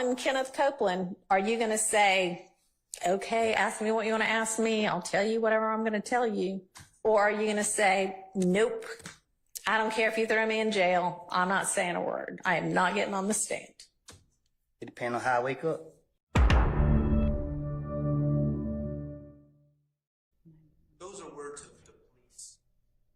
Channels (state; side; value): identical; both; correlation 1.00